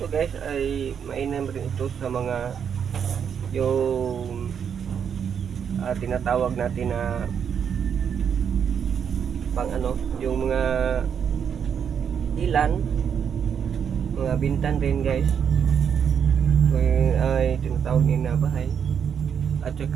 guys ay mainam rin ito sa mga yung tinatawag natin na pang ano, yung mga ilan, mga bintan rin guys. Ay tinatawag nila na bahay. At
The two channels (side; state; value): left; quieter; 7.6 dB